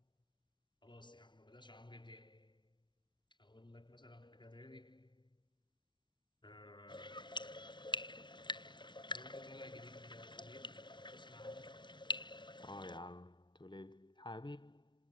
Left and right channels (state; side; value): late; right; 0.23 ms